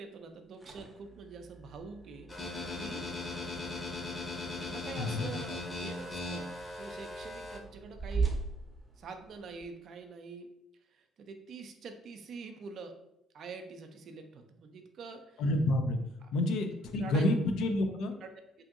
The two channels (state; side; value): normal; both; correlation 0.64